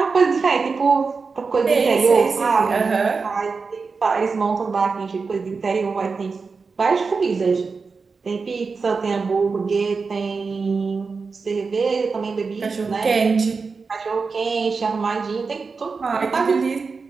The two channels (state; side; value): quieter; left; 4.7 dB